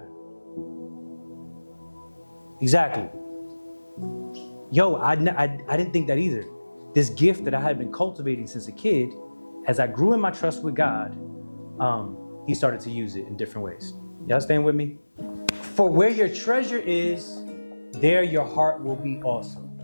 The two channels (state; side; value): inverted; both; correlation -1.00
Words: Exactly. Yo, I didn't think that either. This gift that I had been cultivating since a kid, as I grew in my trust with God, He started to use it in different ways. Y'all staying with me? For where your treasure is, there your heart will be also.